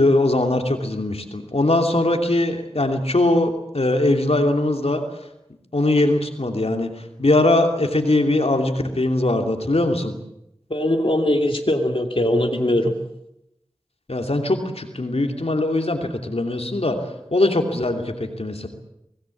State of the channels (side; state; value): both; normal; correlation 0.76